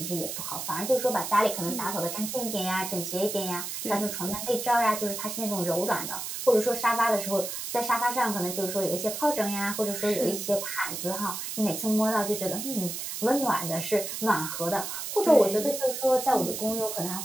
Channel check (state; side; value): noise; right; hiss, 5 dB below the sound